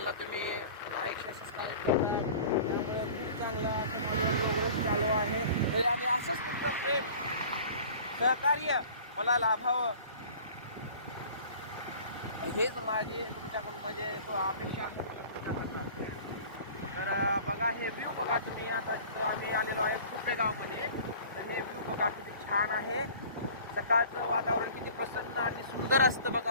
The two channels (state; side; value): inverted; both; correlation -0.45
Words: तुम्ही लाईक सबस्क्राईब करता. खूप चांगलं असं माझं प्रोग्रेस चालू आहे. आणि असंच तुमचं प्रेम सहकार्य मला लाभावं हेच माझी तुमच्याकडून म्हणजे तो अपेक्षा आहे तुमच्याकडनं. तर बघा हे व्ह्यू बघा तुम्ही. आता तिथं आम्ही आलेलो आहे खुर्पे गावमध्ये. तर हे व्ह्यू बघा किती छान आहे. सकाळचं वातावरण किती प्रसन्न आणि सुंदर असतं